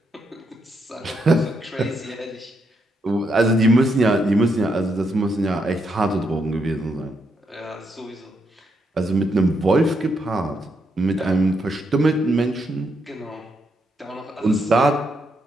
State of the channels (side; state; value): both; normal; correlation 0.79